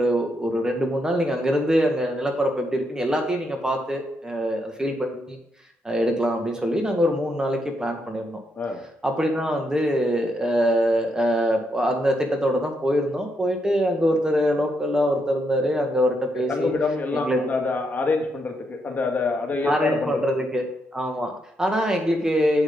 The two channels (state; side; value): normal; both; correlation 0.79